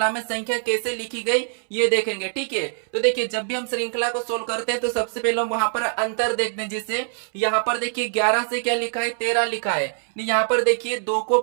में संख्या कैसे लिखी गई ये देखेंगे। ठीक है, तो देखिए जब भी हम श्रृंखला को सोल्व करते हैं तो सबसे पहले हम वहां पर अंतर देखते हैं। जैसे यहाँ पर देखिए 11 से क्या लिखा है, 13 लिखा है। यहाँ पर देखिए 2 को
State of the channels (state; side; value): silent; left; 63 dB below the other